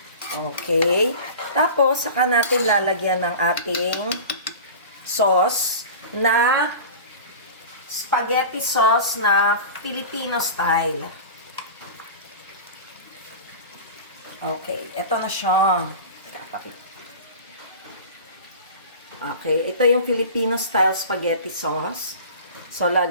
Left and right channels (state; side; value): inverted; both; correlation -0.35